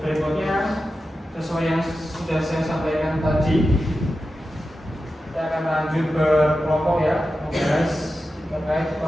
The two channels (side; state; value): both; normal; correlation 0.92